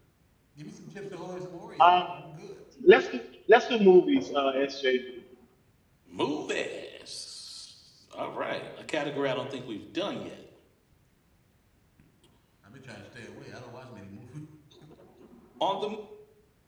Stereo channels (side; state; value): both; identical; correlation 1.00